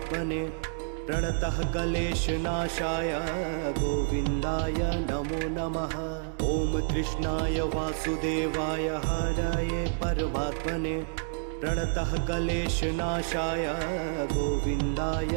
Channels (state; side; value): silent; left; 59 dB below the other